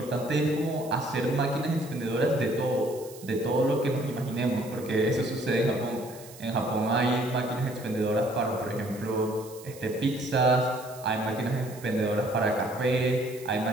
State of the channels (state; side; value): noise; right; hiss, 19 dB below the sound